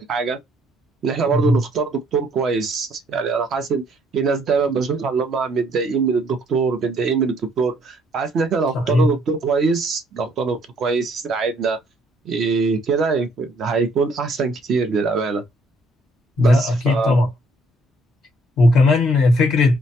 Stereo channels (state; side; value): normal; both; correlation 0.65